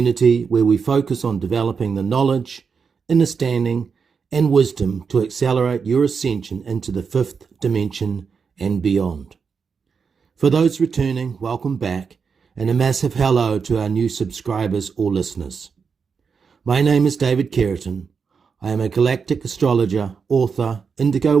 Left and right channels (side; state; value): left; quieter; 5.8 dB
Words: where we focus on developing the knowledge, understanding, and wisdom to accelerate your ascension into the fifth dimension and beyond. For those returning, welcome back, and a massive hello to our new subscribers or listeners. My name is David Keratin. I am a galactic astrologer, author, indigo